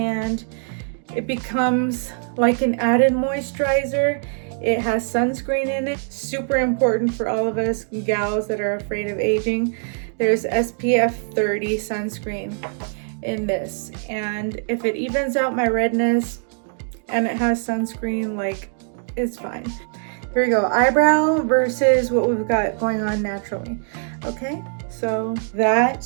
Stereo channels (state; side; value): silent; left; 64 dB below the other